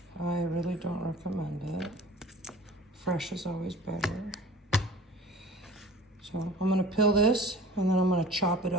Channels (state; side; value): normal; both; correlation 0.43